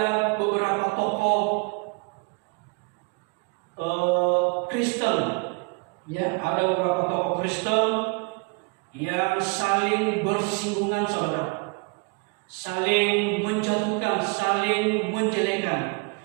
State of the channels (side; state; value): left; quieter; 32.1 dB